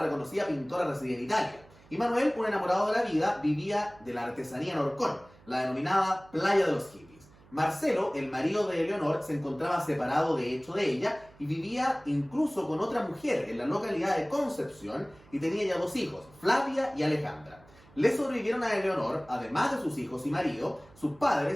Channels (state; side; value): noise; right; hum, 26 dB below the sound